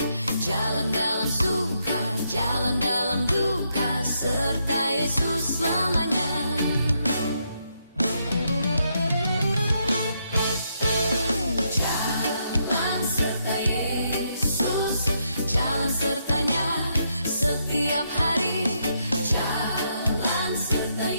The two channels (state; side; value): inverted; both; correlation -0.78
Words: Jalan dalam suka, jalan dalam duka, serta Yesus selamanya. Jalan serta Yesus, jalan sertanya setiap hari. Jalan serta